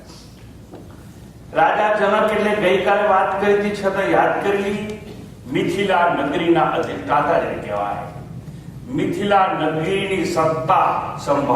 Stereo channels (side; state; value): both; identical; correlation 1.00